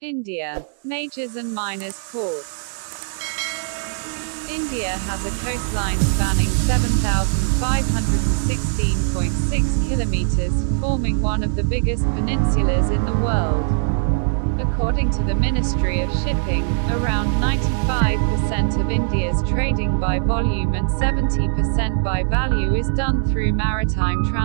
India. Majors and minors ports. India has a coastline spanning 7,516.6 kilometres, forming one of the biggest peninsulas in the world. According to the Ministry of Shipping, around 95% of India's trading by volume and 70% by value is done through maritime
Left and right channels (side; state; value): left; silent; digital silence